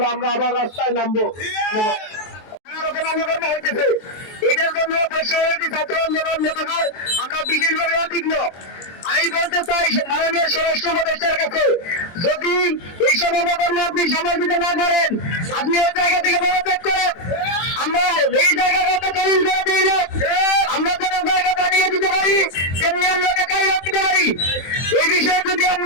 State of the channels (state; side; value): late; right; 23 ms